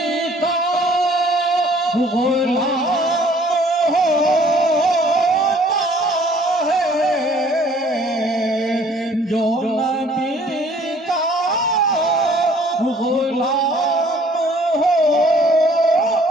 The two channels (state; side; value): normal; both; correlation 0.57